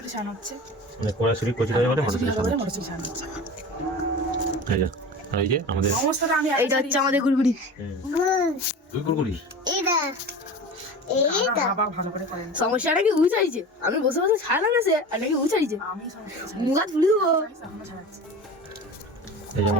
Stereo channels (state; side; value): normal; both; correlation 0.33